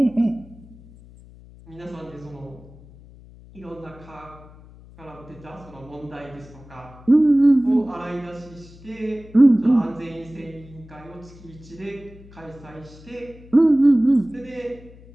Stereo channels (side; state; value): left; noise; hum, 21 dB below the sound